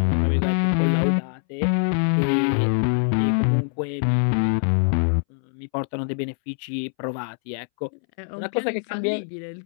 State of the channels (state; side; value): silent; right; 63 dB below the other